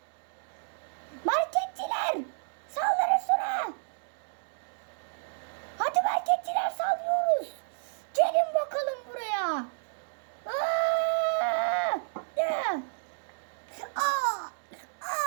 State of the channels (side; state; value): left; silent; digital silence